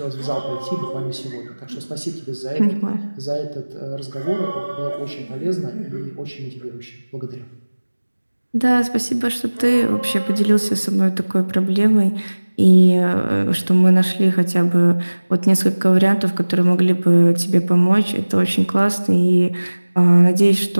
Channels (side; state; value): both; inverted; correlation -1.00